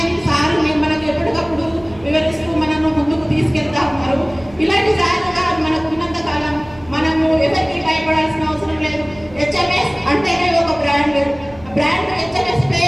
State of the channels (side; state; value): right; noise; hum, 21 dB below the sound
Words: సార్ మనకు ఎప్పటికప్పుడు వివరిస్తూ మనను ముందుకు తీసుకెళ్తా ఉన్నారు. ఇలాంటి సార్లుగా మనకు ఉన్నంత కాలం మనము ఎవరికి భయపడాల్సిన అవసరం లేదు. హెచ్ఎంఎస్ అంటేనే ఒక బ్రాండ్ హెచ్ఎంఎస్